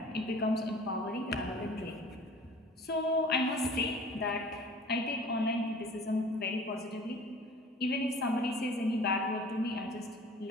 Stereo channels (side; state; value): both; normal; correlation 0.46